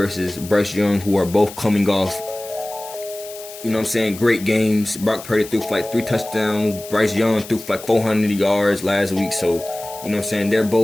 Bryce Young, who are both coming off, you know what I'm saying, great games. Brock Purdy threw for like 3 touchdowns. Bryce Young threw for like 400 yards last week. So, you know what I'm saying, they're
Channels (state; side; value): noise; left; hiss, 15 dB below the sound